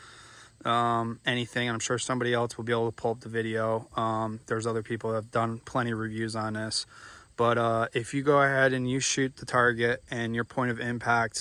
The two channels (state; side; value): identical; both; correlation 1.00